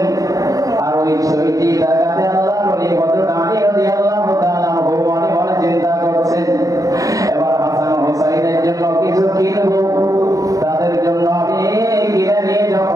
কিছু কিনবো, তাদের জন্য আমি কিনে নিয়ে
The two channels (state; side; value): late; left; 0.17 ms